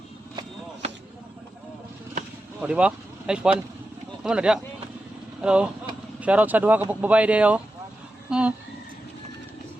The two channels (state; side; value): normal; both; correlation 0.91